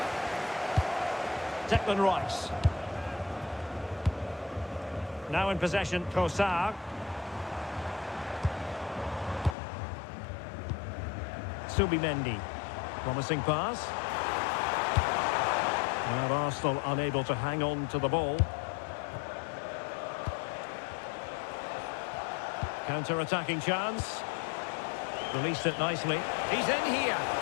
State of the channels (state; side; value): drops out; right; at 9.6 s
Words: Declan Rice. Now in possession, Trossard. Subimendi. Promising pass. Now Arsenal unable to hang on to the ball. Counter-attacking chance. Released it nicely. He's in here.